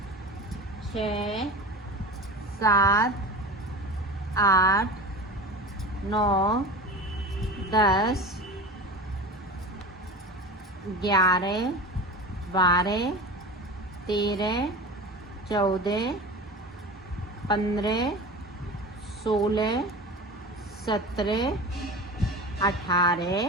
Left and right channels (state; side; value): normal; both; correlation 0.32